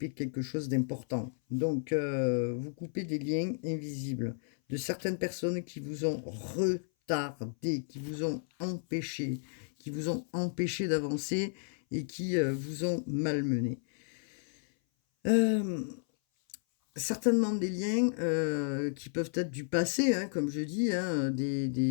quelque chose d'important. Donc vous coupez des liens invisibles de certaines personnes qui vous ont retardé, qui vous ont empêché d'avancer, et qui vous ont malmené. Certainement des liens qui peuvent être du passé, hein, comme je dis, hein, des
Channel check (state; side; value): silent; right; 56 dB below the other